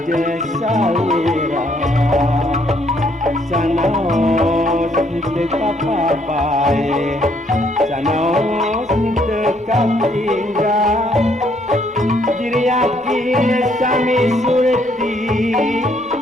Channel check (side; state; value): both; normal; correlation 0.68